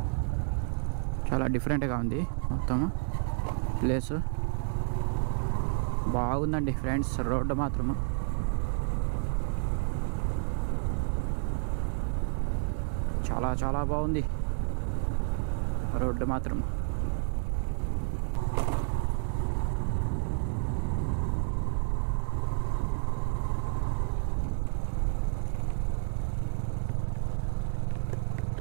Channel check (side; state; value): left; silent; digital silence